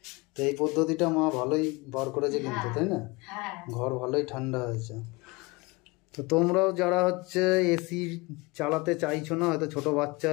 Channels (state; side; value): quieter; right; 24.9 dB